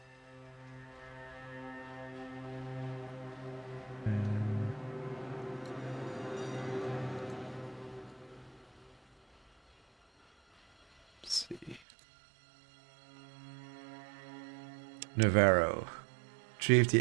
Let's see. Navarro. Retrieve the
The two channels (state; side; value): drops out; left; at 11.8 s